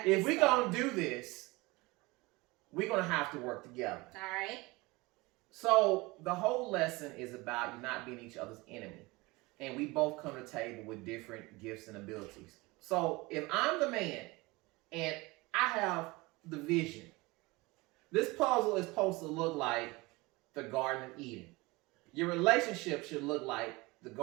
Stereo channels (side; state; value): left; quieter; 22.7 dB